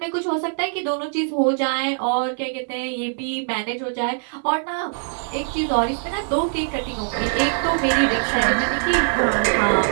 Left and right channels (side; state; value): left; silent; digital silence